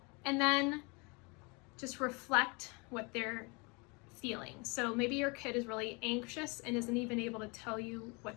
And then just reflect what they're feeling. So maybe your kid is really anxious and isn't even able to tell you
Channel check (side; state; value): right; quieter; 29.7 dB